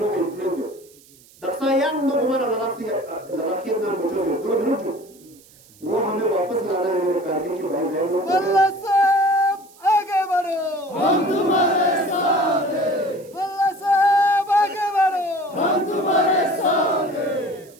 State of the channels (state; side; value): noise; right; hiss, 26 dB below the sound